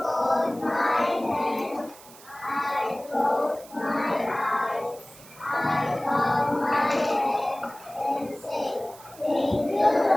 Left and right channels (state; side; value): noise; right; hiss, 21 dB below the sound